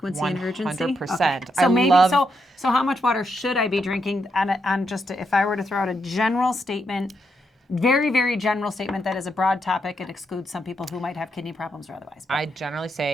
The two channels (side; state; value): both; normal; correlation 0.81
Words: and urgency? 100%. Okay. So so how much water should I be drinking on just if I were to throw out a general statement, very, very general statement that is a broad topic, it excludes some people who might have kidney problems or otherwise. I generally